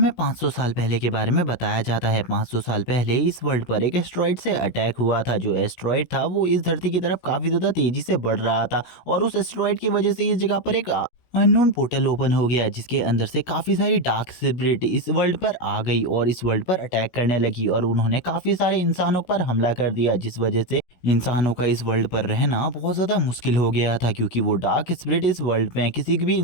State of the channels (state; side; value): late; right; 16 ms